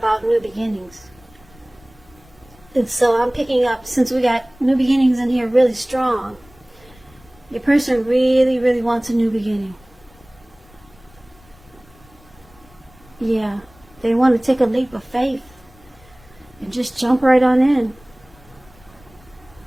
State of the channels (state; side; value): noise; left; rumble, 27 dB below the sound